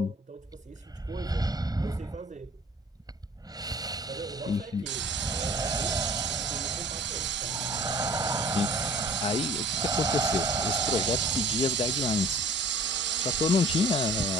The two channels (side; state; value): both; normal; correlation 0.50